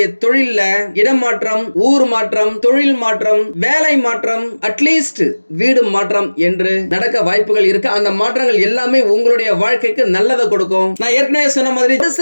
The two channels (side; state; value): both; inverted; correlation -1.00